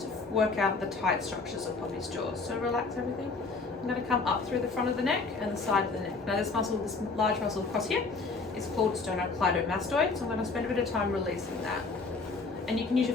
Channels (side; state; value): right; quieter; 4.1 dB